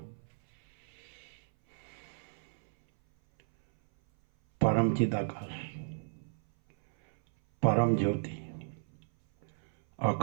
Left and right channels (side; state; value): left; silent; 55 dB below the other